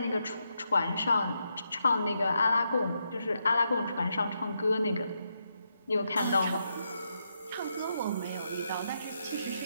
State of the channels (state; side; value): inverted; both; correlation -0.82